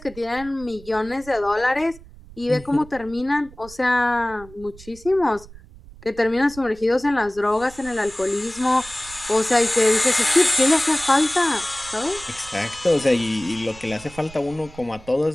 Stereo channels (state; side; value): noise; right; rumble, 20 dB below the sound